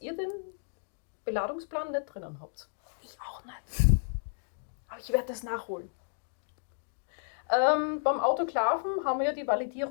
ihr den Beladungsplan nicht drinnen habt. Ich auch nicht. Aber ich werde das nachholen. Beim Autoklaven haben wir ja die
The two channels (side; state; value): right; silent; digital silence